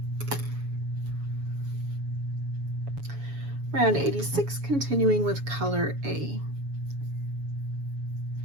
Round 86, continuing with color A.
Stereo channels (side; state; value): left; late; 7.1 ms